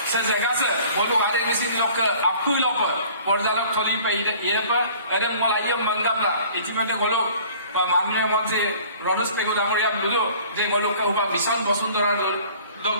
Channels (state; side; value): inverted; both; correlation -0.50